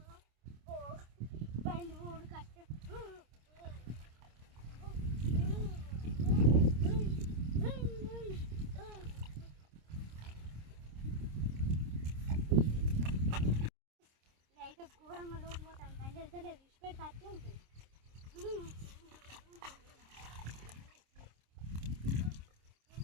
బండి ఊడు కట్టే అయితే ఘోరంగా లోటు పోతాను బండి వెళ్తలేదు విడిచిపెడితే అట్టే ఉంటుంది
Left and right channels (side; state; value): left; late; 26 ms